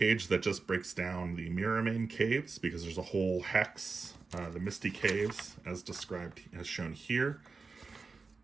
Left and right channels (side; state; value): left; quieter; 4.4 dB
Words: that just breaks down the Mirrormain Caves, because there's a whole hex, the Misty Caves, as described, as shown here,